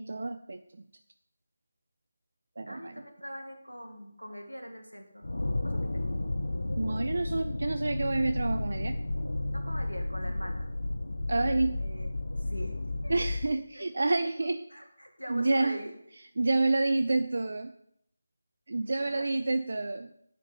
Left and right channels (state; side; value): inverted; both; correlation -0.97